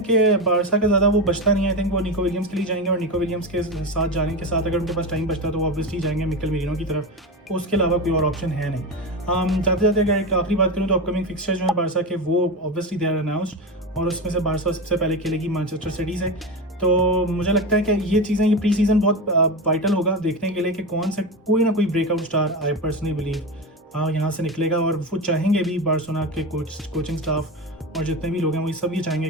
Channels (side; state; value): both; normal; correlation 0.20